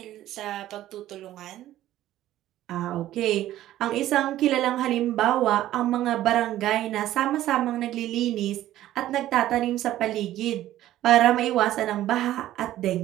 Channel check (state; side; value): quieter; left; 13.8 dB